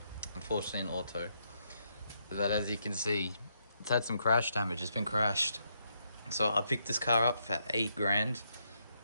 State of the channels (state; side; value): inverted; both; correlation -0.78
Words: unfortunately in auto, that, as you can see, it's had some crash damage. It's been crashed. So I picked this car up for 8 grand.